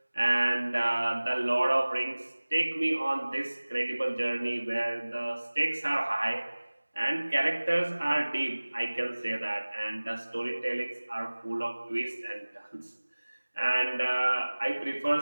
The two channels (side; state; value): both; inverted; correlation -1.00